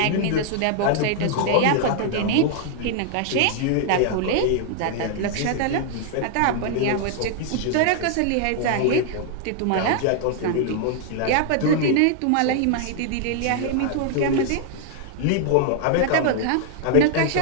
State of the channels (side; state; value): both; different; correlation 0.00